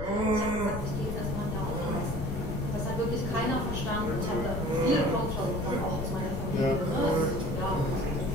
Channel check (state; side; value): noise; left; rumble, 5 dB below the sound